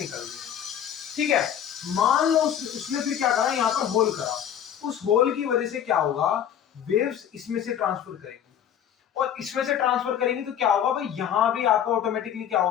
रही है। ठीक है, मान लो उसने फिर क्या करा, यहाँ पर होल करा, उस होल की वजह से क्या होगा, वेव्स इसमें से ट्रांसफर करेंगी, और इसमें से ट्रांसफर करेंगी तो क्या होगा भाई, यहां भी आपका ऑटोमेटिकली क्या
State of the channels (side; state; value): right; quieter; 9.4 dB